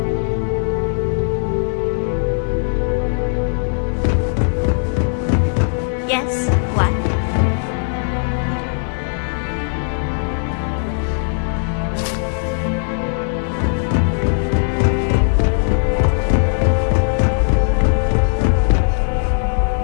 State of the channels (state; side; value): silent; right; digital silence